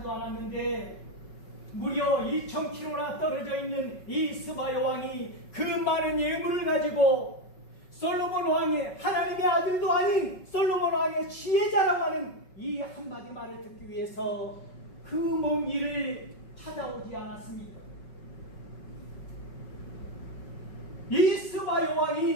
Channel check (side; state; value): right; late; 5.4 ms